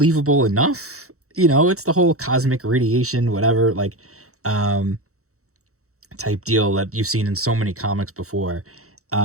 enough. It's the whole cosmic radiation, whatever, like, type deal that you've seen in so many comics before.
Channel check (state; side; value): late; left; 0.64 ms